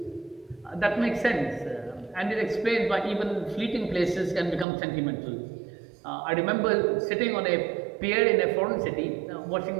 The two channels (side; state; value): left; drops out; at 4.7 s